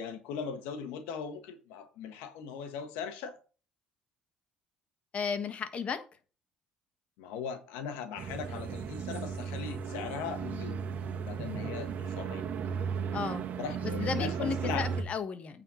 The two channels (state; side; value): normal; both; correlation 0.51